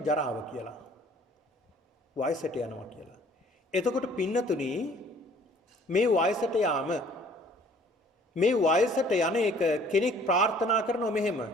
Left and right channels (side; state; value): both; normal; correlation 0.55